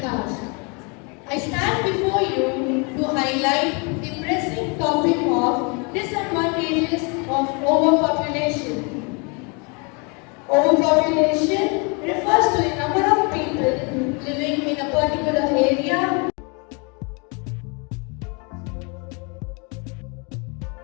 I stand before you to highlight the pressing topic of disadvantages of overpopulation. Overpopulation refers to the number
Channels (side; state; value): right; quieter; 32.9 dB